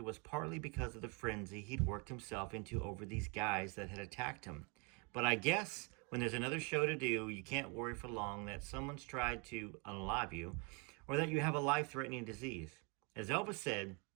was partly because of the frenzy he'd worked himself into over these guys that had attacked him. But I guess when there's another show to do, you can't worry for long that someone's tried to unalive you or that you have a life-threatening disease. As Elvis said,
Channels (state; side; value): quieter; left; 32.7 dB